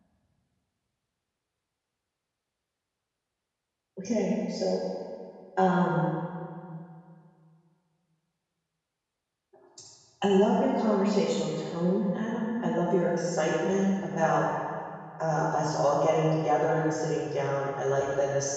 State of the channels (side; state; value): both; identical; correlation 1.00